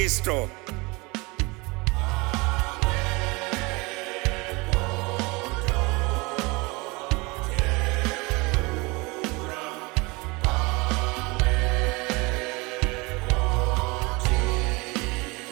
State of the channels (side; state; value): left; quieter; 25.7 dB